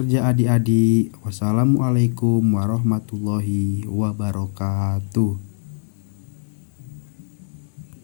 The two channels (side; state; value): right; silent; digital silence